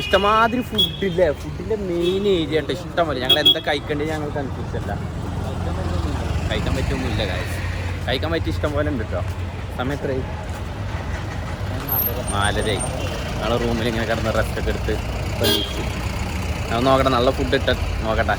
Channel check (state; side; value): identical; both; correlation 1.00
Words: ഫുഡില്ലേ. ഫുഡിൻ്റെ മെയിൻ ഏരിയ ഉണ്ട്. ഇഷ്ടമല്ല. ഞങ്ങൾ എന്താ കഴിക്കേണ്ടത് ഞങ്ങൾ കൺഫ്യൂസല്ല. കഴിക്കാൻ പറ്റൊന്നുമില്ല കാര്യം. കഴിക്കാൻ പറ്റിയ ഇഷ്ടം പോലെ ഉണ്ട് കേട്ടോ. സമയം എത്രയായി? 4:30. ഞങ്ങൾ റൂമിൽ ഇങ്ങനെ കിടന്ന് റെസ്റ്റൊക്കെ എടുത്ത് കഴിച്ചു. ഞാൻ നോക്കട്ടെ നല്ല ഫുഡ് ഇട്ട് നോക്കട്ടെ.